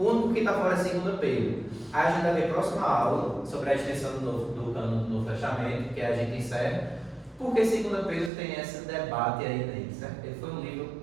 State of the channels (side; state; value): left; drops out; at 8.3 s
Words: único que está fora é 2 Pedro. Aí a gente vai ver a próxima aula sobre a extensão do cânon do Novo Testamento, que a gente encerra, porque 2 Pedro tem esse debate aí nele. Certo? Ele foi um livro